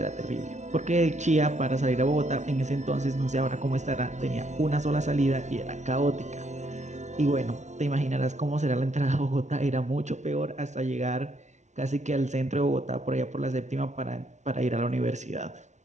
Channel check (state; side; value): late; left; 0.34 ms